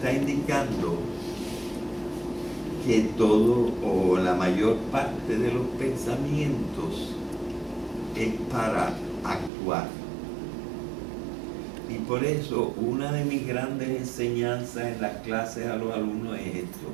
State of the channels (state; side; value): drops out; left; at 9.5 s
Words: indicando que todo o la mayor parte de los pensamientos es para actuar. Y por eso una de mis grandes enseñanzas en las clases a los alumnos es esto: